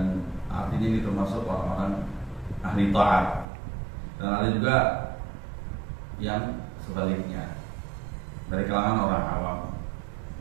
artinya ini termasuk orang-orang ahli taat. Dan ada juga yang sebaliknya, dari kalangan orang awam.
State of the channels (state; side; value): drops out; left; at 3.5 s